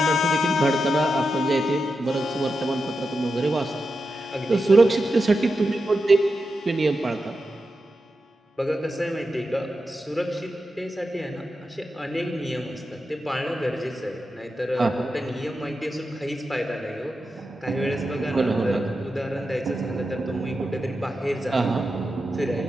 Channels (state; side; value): normal; both; correlation 0.89